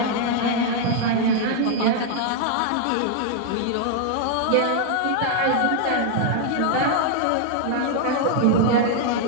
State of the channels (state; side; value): different; both; correlation -0.01